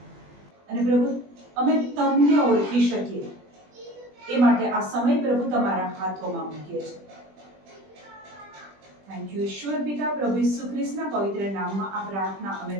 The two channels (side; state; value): left; late; 20 ms